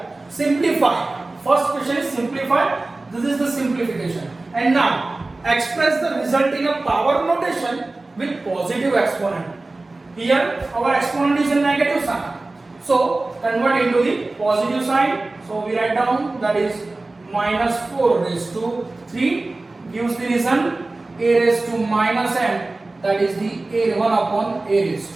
simplify. First question is simplify. This is the simplification. And now express the result in a power notation with positive exponent. Here our exponent is a negative sign, so convert into the positive sign. So we write down, that is minus 4 raised to 3 gives the reason a raised to minus m, that is the a1 upon a raised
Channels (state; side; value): quieter; left; 3.1 dB